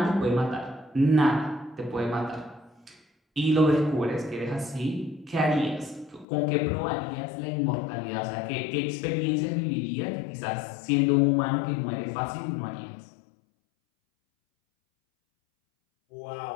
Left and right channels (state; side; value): drops out; right; at 6.2 s